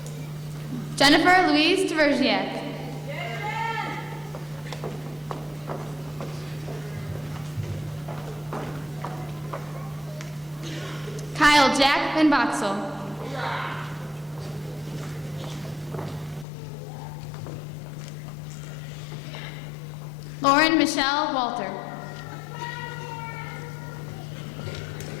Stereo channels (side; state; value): right; drops out; at 16.4 s